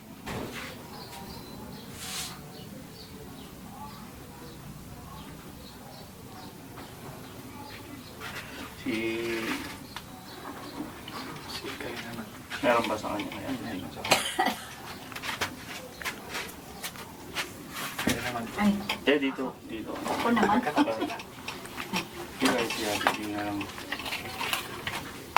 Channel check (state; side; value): identical; both; correlation 1.00